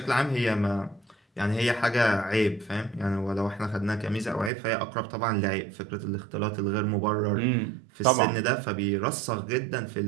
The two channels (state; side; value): drops out; left; at 4.5 s